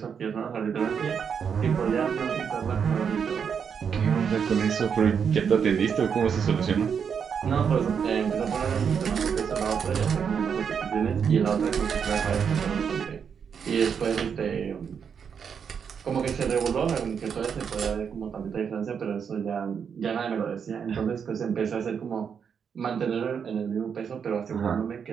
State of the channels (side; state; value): left; quieter; 7.0 dB